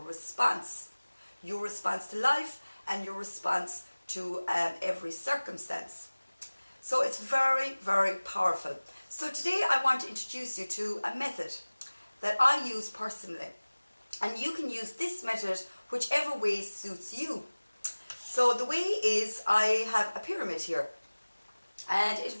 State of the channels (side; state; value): both; inverted; correlation -1.00